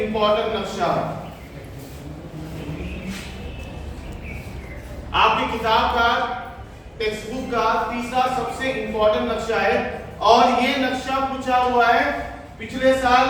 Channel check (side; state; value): both; identical; correlation 1.00